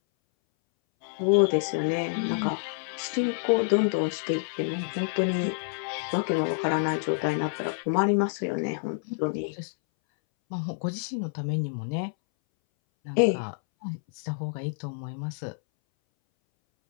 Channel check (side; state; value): right; silent; 59 dB below the other